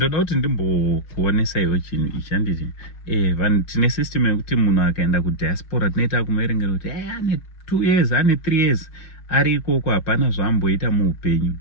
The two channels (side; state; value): right; late; 6.2 ms